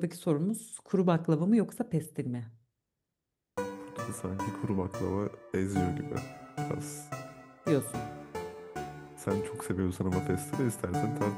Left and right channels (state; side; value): identical; both; correlation 1.00